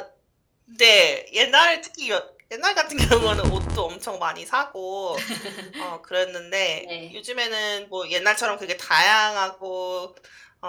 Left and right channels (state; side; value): identical; both; correlation 1.00